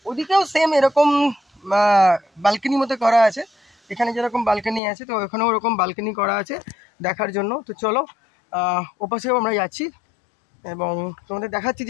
ওদিকেও সেম এরকম বালকনি মতো করা আছে, এখানে যেরকম বালকনি আছে তো ওখানেও ওরকম বালকনি করা আছে দেখার জন্য। তো চলো ওপাশেও আমরা যাচ্ছি এবং তোমাদের দেখাচ্ছি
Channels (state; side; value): drops out; right; at 4.8 s